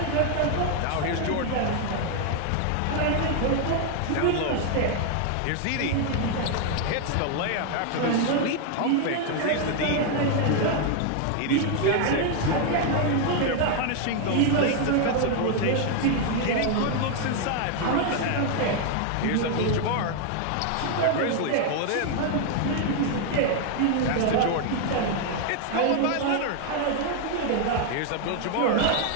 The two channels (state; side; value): different; both; correlation 0.00